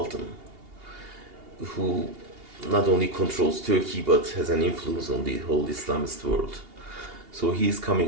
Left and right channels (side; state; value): left; late; 2.8 ms